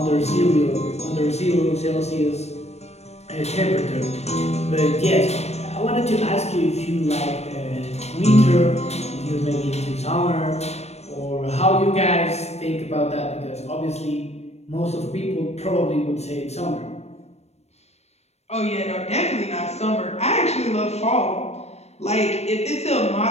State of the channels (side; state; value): right; late; 0.31 ms